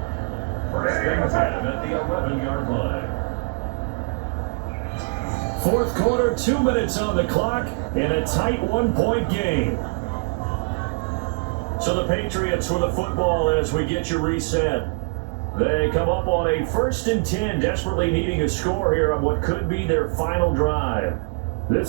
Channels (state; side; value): silent; left; 63 dB below the other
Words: First and 10 at the 11-yard line. Fourth quarter, 2 minutes on the clock, and a tight 1-point game. So the Patriots with the football as we get you reset. They come up on a first and 10, desperately needing a score here on what could be their final drive.